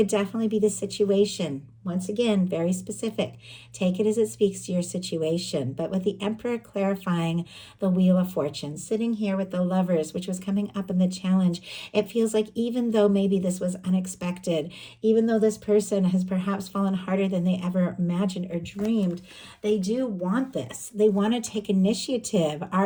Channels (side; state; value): both; identical; correlation 1.00